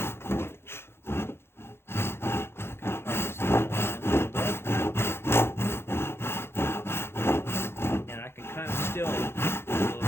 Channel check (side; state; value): right; late; 0.12 ms